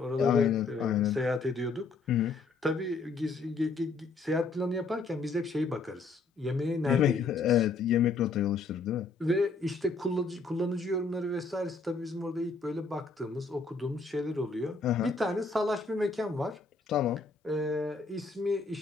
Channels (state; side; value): quieter; right; 4.1 dB